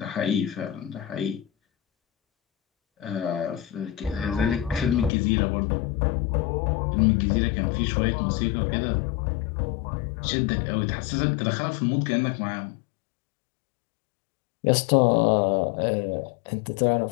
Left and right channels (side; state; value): right; drops out; at 5.1 s